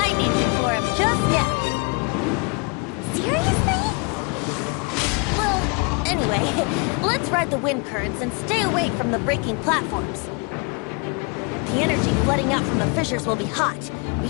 named it for him just now. Seriously? Well, anyway, let's ride the wind currents and stay away from the breaking platforms. The energy flooding out from the fissures will be hot. Be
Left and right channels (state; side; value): quieter; right; 33.0 dB